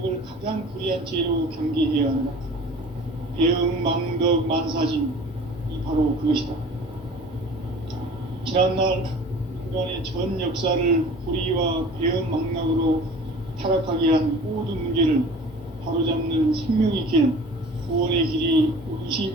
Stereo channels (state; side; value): normal; both; correlation 0.44